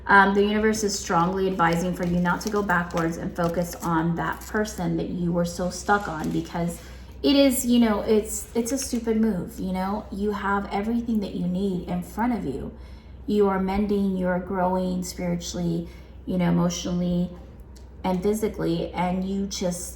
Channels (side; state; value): both; identical; correlation 1.00